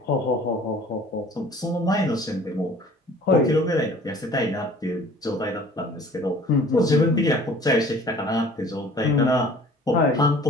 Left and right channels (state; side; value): normal; both; correlation 0.49